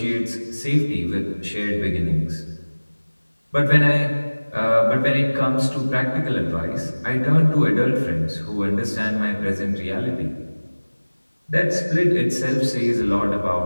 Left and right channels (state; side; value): inverted; both; correlation -1.00